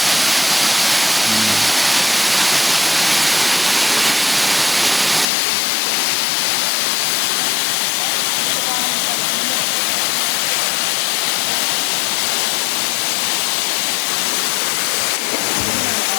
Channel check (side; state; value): right; drops out; at 5.2 s